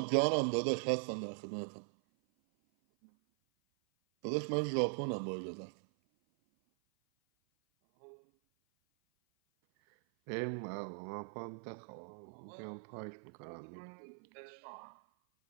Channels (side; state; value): left; silent; 51 dB below the other